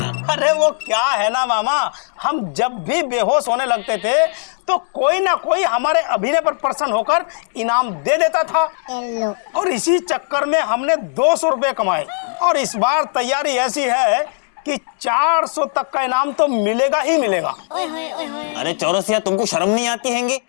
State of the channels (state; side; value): silent; right; digital silence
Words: अरे वो क्या है ना मामा, हम जब भी बेहोश होने लगते थे तो कोई ना कोई हमारे अभिनय पर प्रसन्न होकर इनाम दे देता था। और इसी चक्कर में हमने 200 रुपए कमाए। और इस बार तैयारी ऐसी है कि 400 तक का इनाम तो मिलेगा ही मिलेगा। अरे चौरसिया, तुमको शर्म नहीं आती हैंगी?